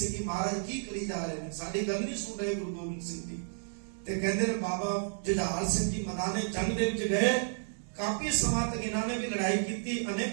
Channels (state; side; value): silent; left; digital silence